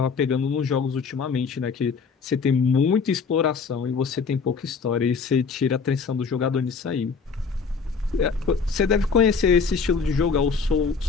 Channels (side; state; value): right; quieter; 5.3 dB